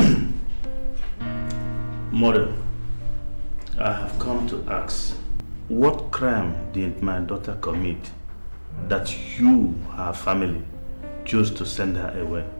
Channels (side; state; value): both; inverted; correlation -1.00